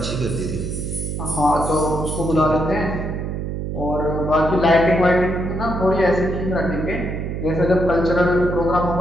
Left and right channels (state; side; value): noise; right; hum, 4 dB below the sound